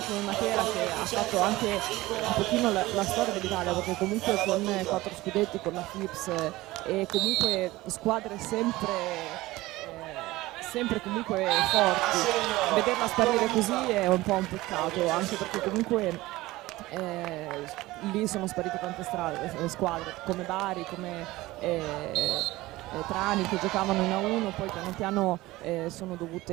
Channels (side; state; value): left; quieter; 18.6 dB